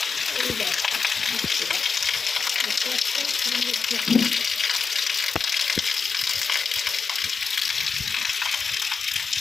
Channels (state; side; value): quieter; right; 5.2 dB